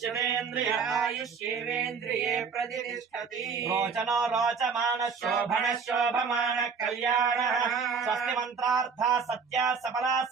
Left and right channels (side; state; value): left; quieter; 5.8 dB